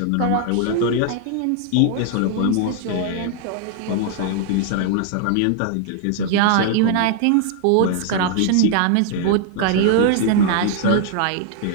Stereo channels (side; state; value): both; different; correlation 0.00